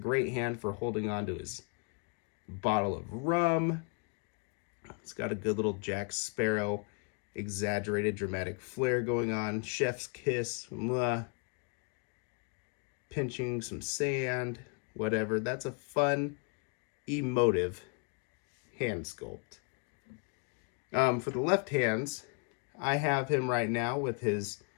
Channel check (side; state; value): right; quieter; 35.0 dB